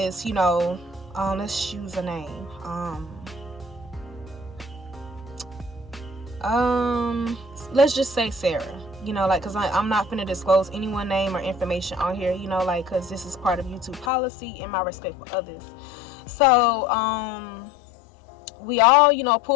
let's choose a name. Let's just say Sarah. Because I'm not finna disclose anyone's name or information on here, because this is part of YouTube policy and my respect for others. So we all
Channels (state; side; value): drops out; right; at 14.1 s